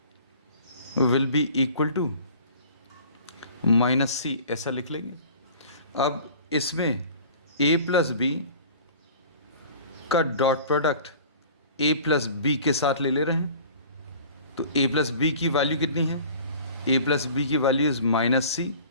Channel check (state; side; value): inverted; both; correlation -0.45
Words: will be equal to minus C, ऐसा लिख लेंगे. अब इसमें ए प्लस बी का dot product A plus B के साथ ले रहे हैं. तो ए प्लस बी की वैल्यू कितनी है? ए प्लस बी की value is minus C